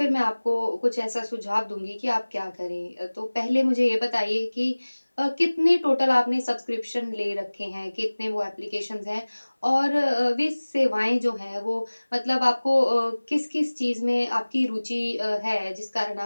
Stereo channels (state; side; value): inverted; both; correlation -1.00